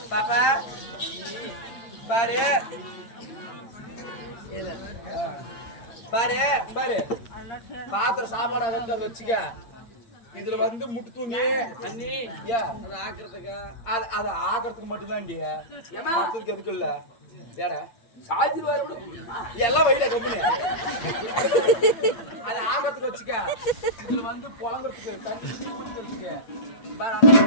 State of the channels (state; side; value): late; right; 8.7 ms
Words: பாப்பா பாரு பாரு பாரு பாத்திர சாப்பாடு அதை வச்சுக்க இதுல வந்து முட்டு தூங்கி அண்ணி அதை ஆக்குறதுக்கு அதை ஆக்குறதுக்கு மட்டும்தான் மத்ததுக்கு எதுக்கு இல்ல ஏடா சாஜி வர எல்லாம் வயல கம்பெனி அதை ஆக்குறதுக்கு வச்சுக்க இதுல வந்து புழங்குறதுக்கு தண்ணி ஊத்துறதுக்கு